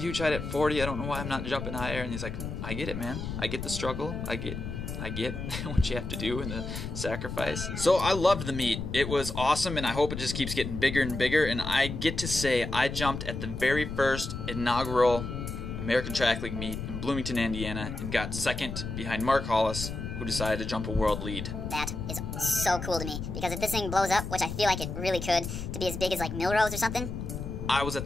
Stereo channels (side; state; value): left; noise; rumble, 6 dB below the sound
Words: huge height at 40. I don't know why I'm not jumping higher. And he's like, I get it, man. I get the struggle. I get what you have to do and the sacrifice. So I loved the meet. It was awesome, and I hope it just keeps getting bigger and bigger. And I get to say I jumped at the very first inaugural American Track League meet in Bloomington, Indiana, and got second behind Mark Hollis, who decided to jump a world lead. That is so cool to me, because if this thing blows up, which I feel like it really could, to be as big as like Milrose or something. I was at